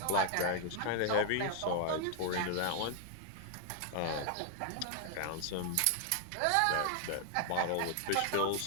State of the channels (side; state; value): both; different; correlation 0.00